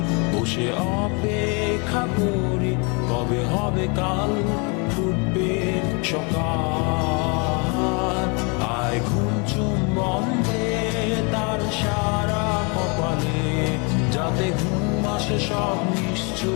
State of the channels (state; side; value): quieter; right; 32.9 dB